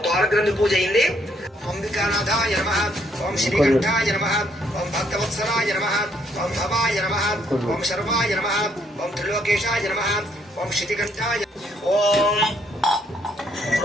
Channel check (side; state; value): both; normal; correlation 0.70